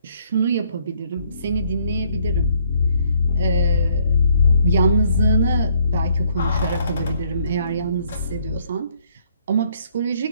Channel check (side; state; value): both; inverted; correlation -0.66